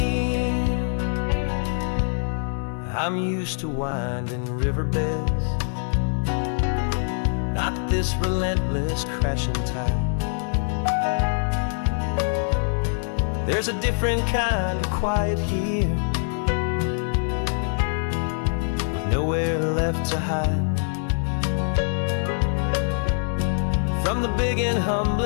I'm used to winding riverbeds, not this relentless crashing tide. There's a different kind of quiet here, with nowhere left to hide. From the big and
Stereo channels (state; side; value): silent; right; digital silence